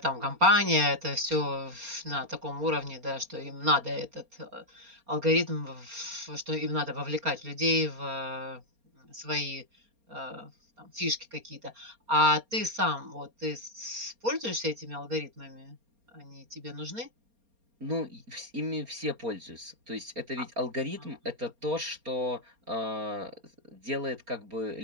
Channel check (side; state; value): left; late; 4.3 ms